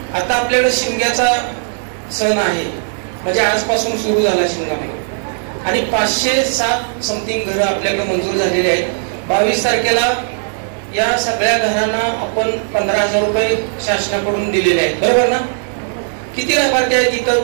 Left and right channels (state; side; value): silent; left; digital silence